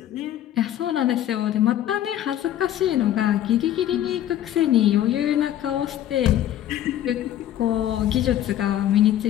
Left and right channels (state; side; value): quieter; right; 11.9 dB